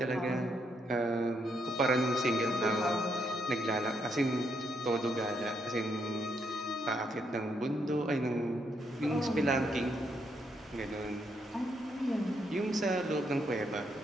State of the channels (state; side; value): normal; both; correlation 0.76